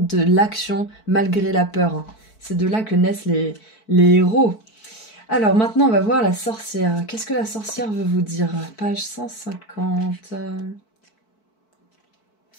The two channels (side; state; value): right; late; 4.6 ms